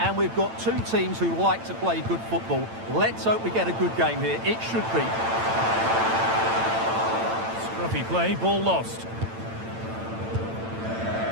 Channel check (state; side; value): late; left; 8.9 ms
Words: we've got two teams who like to play good football. Let's hope we get a good game here. It should be. Scruffy play, ball lost.